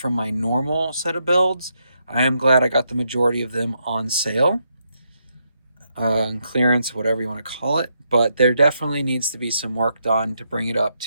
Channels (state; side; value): inverted; both; correlation -0.79